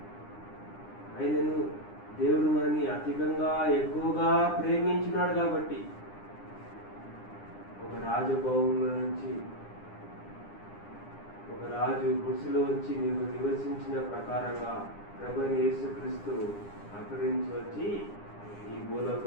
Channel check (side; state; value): right; late; 9.9 ms